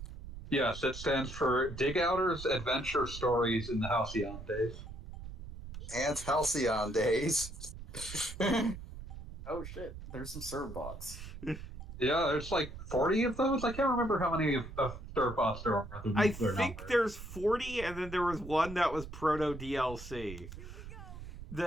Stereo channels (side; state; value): right; noise; rumble, 11 dB below the sound